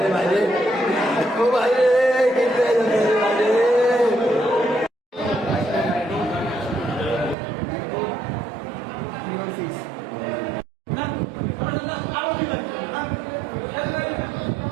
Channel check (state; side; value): drops out; left; at 7.4 s